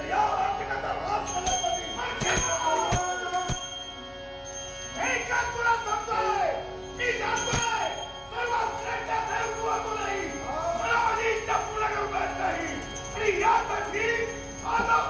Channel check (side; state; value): both; identical; correlation 1.00